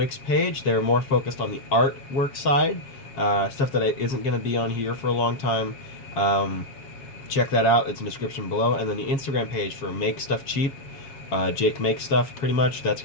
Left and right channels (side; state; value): right; late; 7.3 ms